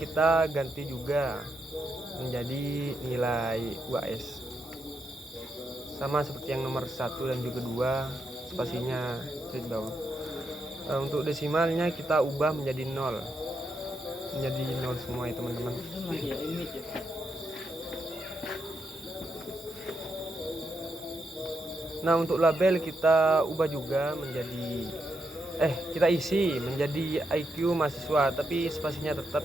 ganti juga menjadi nilai UAS. Sama seperti yang nomor 1 dan juga 2, spasinya straight bawah. Untuk desimalnya kita ubah menjadi 0. Menjadi 0 semua ya teman-teman. Nah, untuk label kita ubah juga menjadi kita isi menjadi IQ mahasiswa, tapi spasinya tetap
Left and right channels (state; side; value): normal; both; correlation 0.82